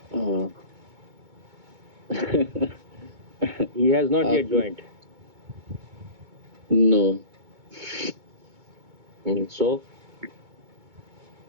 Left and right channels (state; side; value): late; left; 2.2 ms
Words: He has not yet joined. No. So?